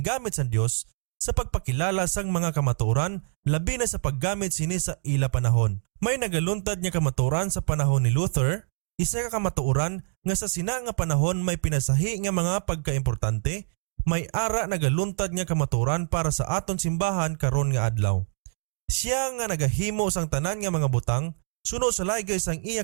sa Dios sa pagpakilala sang mga kamatuoran labi na sa paggamit sini sa ila panahon. May nagaluntad nga kamatuoran sa panahon ni Luther, isa ka kamatuoran nga sa sina nga panahon may pinasahi nga mga pagkaimportante, may ara nagaluntad nga kamatuoran para sa aton simbahan karon nga adlaw. Siya nga nagahimo sang tanan nga mga butang, suno sa laygay sang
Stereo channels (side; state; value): left; silent; 61 dB below the other